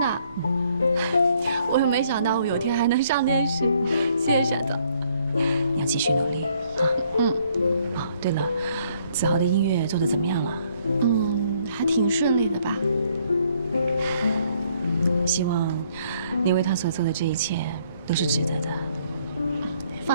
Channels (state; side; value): inverted; both; correlation -0.66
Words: 我也没想到我有天还能上电视，谢谢沈总。你要继续努力啊。哦，对了，子豪的音乐做得怎么样了？还挺顺利的吧。希望你为他所做的这一切都是值得的。